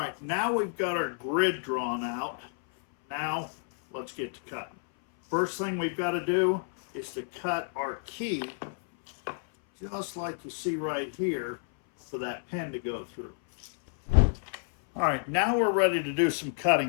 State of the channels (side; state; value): right; silent; 57 dB below the other